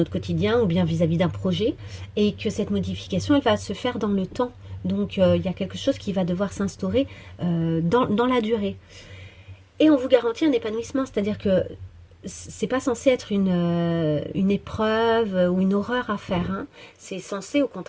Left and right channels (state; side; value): identical; both; correlation 1.00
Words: quotidien, ou bien vis-à-vis d'un projet, et que cette modification, elle va se faire dans le temps. Donc, il y a quelque chose qui va devoir s'instaurer dans la durée. Et on vous garantit un épanouissement, c'est-à-dire que c'est pas censé être une épreuve ou une horreur à faire, hein. C'est censé au